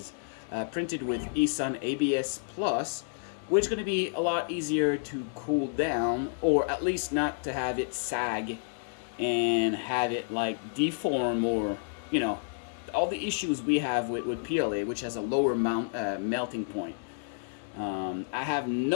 printed with eSun ABS Plus, which is going to be a lot easier to cool down, or at least not to have it sag and have it like deform, or all the issues we have with PLA, which has a lower melting point. I have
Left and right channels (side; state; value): right; silent; 58 dB below the other